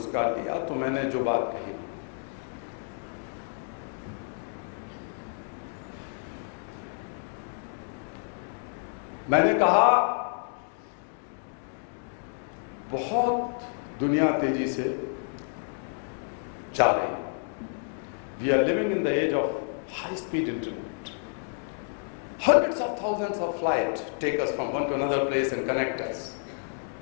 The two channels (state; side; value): silent; right; 57 dB below the other